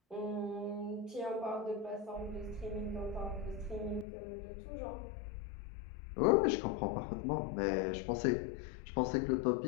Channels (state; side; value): drops out; right; at 4.0 s